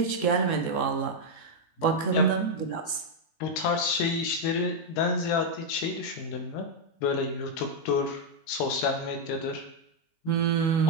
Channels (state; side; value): late; right; 19 ms